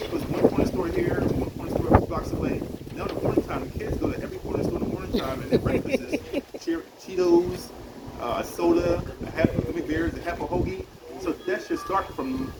one corner store here, one corner store a few blocks away. Now in the morning time, the kids go to every corner store in the morning time, and their breakfast is Cheetos, soda, a half of gummy bears, a half a hoagie. So that should start from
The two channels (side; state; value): both; identical; correlation 1.00